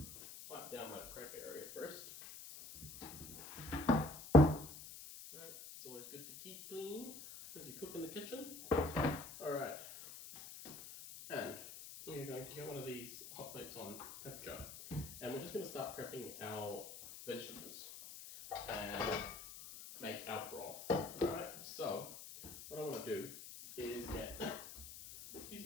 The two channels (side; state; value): left; noise; hiss, 12 dB below the sound